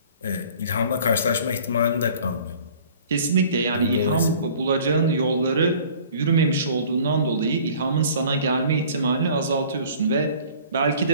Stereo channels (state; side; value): inverted; both; correlation -0.49